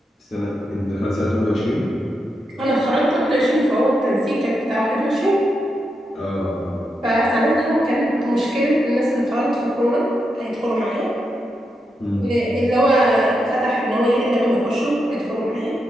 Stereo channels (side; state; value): both; normal; correlation 0.85